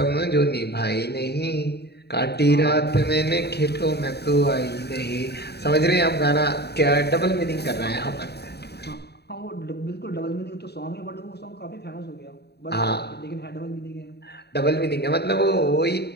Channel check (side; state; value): right; late; 0.48 ms